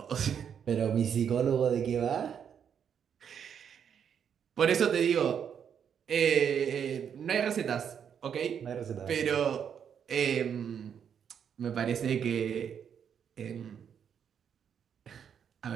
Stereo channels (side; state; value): left; quieter; 8.0 dB